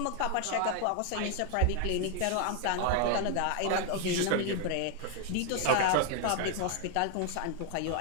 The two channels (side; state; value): both; different; correlation 0.00